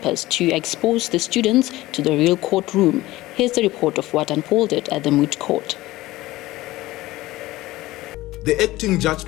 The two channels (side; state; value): right; quieter; 17.8 dB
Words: to expose the students to the real courtroom. Here's the report of what unfolded at the moot court. The acting judge